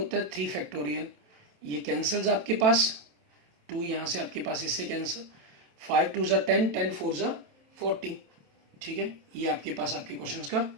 है 3 फैक्टोरियल। ये कैंसल्स आपके पास, 2 यहाँ से आपके पास इससे कैंसिल, 5 2 ज़ा 10, 10 4 ज़ा 40, ठीक है, ये आपके पास आपके क्वेश्चंस का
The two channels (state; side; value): late; left; 27 ms